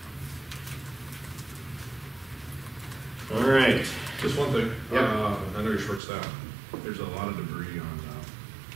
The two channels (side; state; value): left; drops out; at 6.0 s